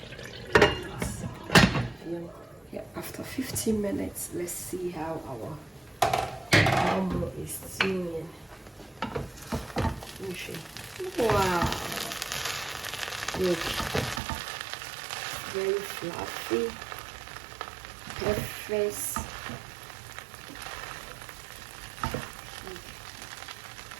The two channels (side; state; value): left; drops out; at 14.2 s